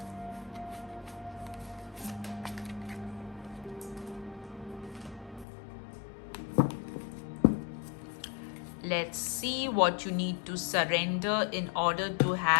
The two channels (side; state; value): right; drops out; at 5.5 s